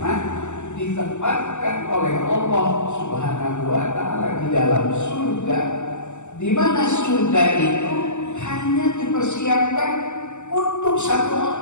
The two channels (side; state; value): right; late; 0.83 ms